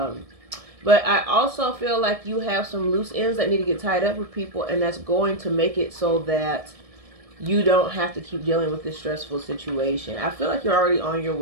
I also feel like you have some loose ends that need to get tied up with people, and that's going to make it so that you don't have to keep dealing with this stressful situation. I feel like you're already on your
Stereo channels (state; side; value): late; left; 1.7 ms